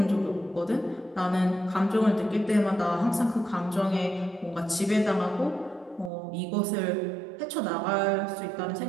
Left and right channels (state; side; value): drops out; left; at 6.1 s